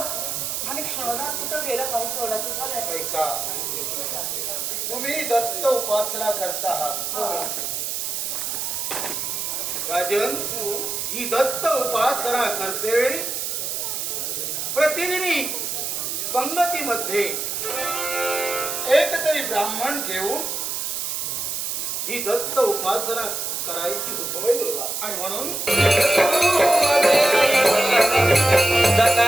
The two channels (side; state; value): right; noise; hiss, 3 dB below the sound